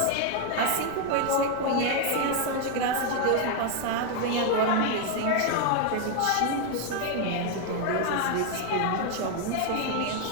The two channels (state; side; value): different; both; correlation 0.01